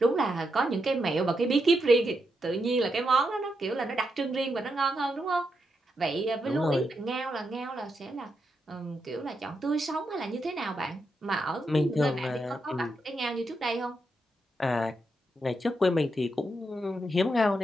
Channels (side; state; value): both; normal; correlation 0.83